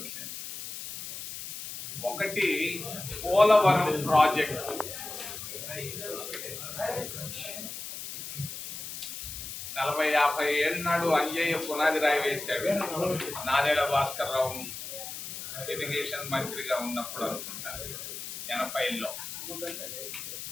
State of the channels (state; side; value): noise; left; hiss, 8 dB below the sound